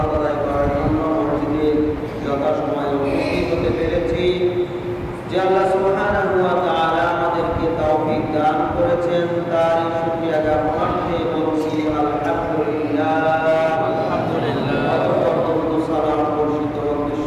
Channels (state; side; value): identical; both; correlation 1.00